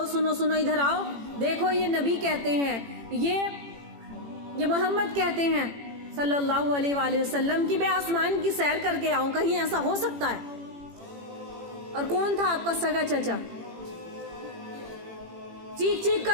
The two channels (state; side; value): late; left; 18 ms